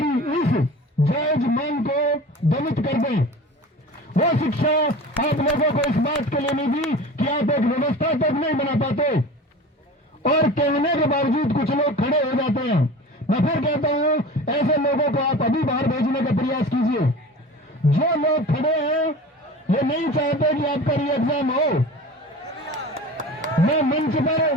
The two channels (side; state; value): both; normal; correlation 0.37